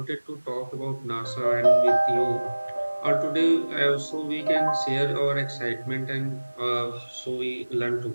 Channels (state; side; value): inverted; both; correlation -1.00